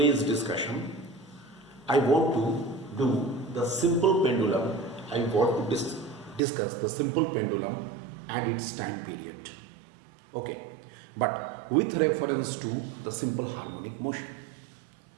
discussion, I want to do the simple pendulum. I want to discuss the simple pendulum and its time period. Okay, but with reference to the simple harmonic motion.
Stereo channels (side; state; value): left; drops out; at 6.4 s